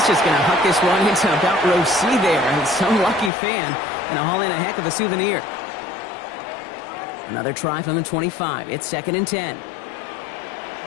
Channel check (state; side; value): drops out; right; at 3.3 s